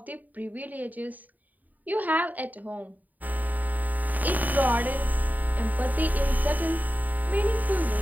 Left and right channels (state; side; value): late; left; 0.081 ms